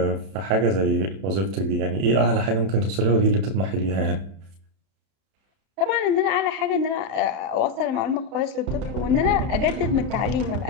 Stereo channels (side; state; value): left; late; 31 ms